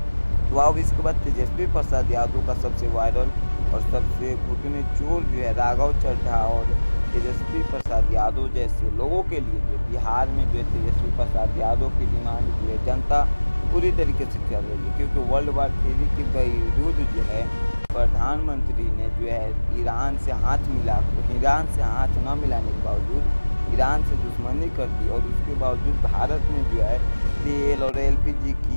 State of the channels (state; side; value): inverted; both; correlation -1.00